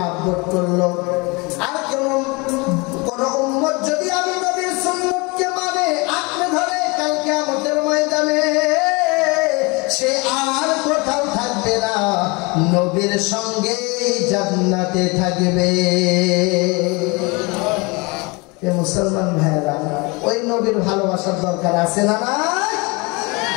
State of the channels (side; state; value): right; quieter; 27.3 dB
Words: করলো। আর কোন উম্মত যদি আমি নবীর সুন্নতকে মানে আঁকড়ে ধরে, কাল কিয়ামতের ময়দানে সে আর কোথাও থাকবে না, নবীর সঙ্গে জান্নাতে থাকবে। মুসলমান ভাইরা, ওই নবীর ভালোবাসার দরকার আছে না? না,